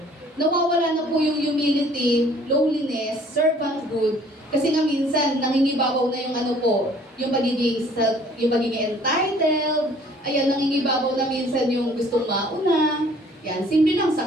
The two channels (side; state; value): both; normal; correlation 0.56